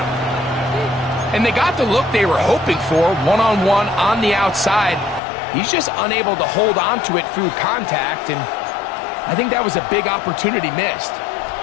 And they got the look they were hoping for, one-on-one on the outside. He's just unable to hold on to it through contact, and I think that was a big opportunity missed.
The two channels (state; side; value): drops out; right; at 5.2 s